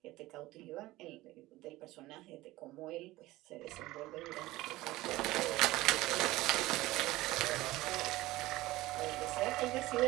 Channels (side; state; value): left; quieter; 18.1 dB